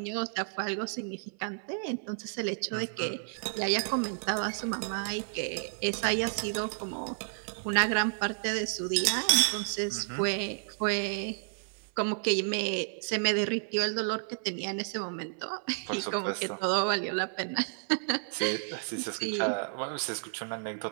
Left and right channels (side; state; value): left; silent; 57 dB below the other